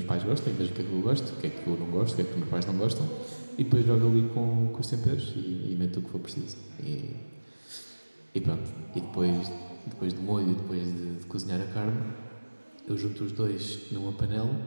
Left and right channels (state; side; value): inverted; both; correlation -1.00